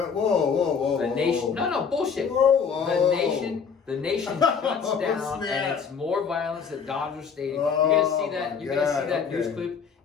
whoa. The nation, no, bullshit. Whoa. The nation shuts Oh, down, snap. and it's more violence at Dodger Stadium. Oh, You're gonna see that. my You're gonna see God, that news okay. clip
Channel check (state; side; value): quieter; right; 6.3 dB